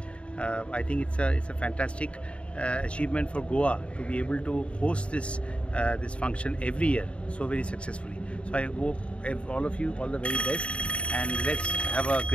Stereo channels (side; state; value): right; late; 0.060 ms